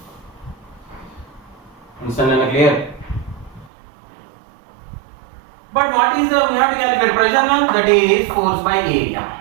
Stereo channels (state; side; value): drops out; left; at 3.7 s